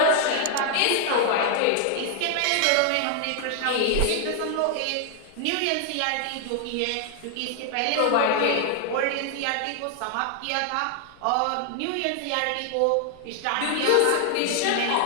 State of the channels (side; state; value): both; different; correlation 0.00